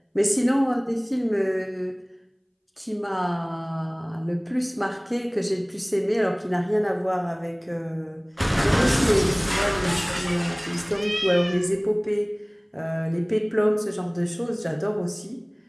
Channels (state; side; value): identical; both; correlation 1.00